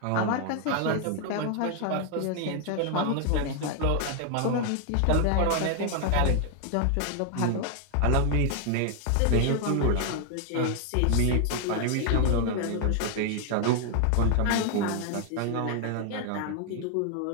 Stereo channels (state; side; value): different; both; correlation 0.00